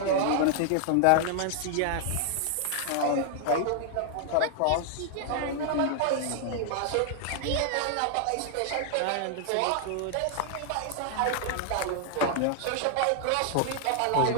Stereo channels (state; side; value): different; both; correlation 0.00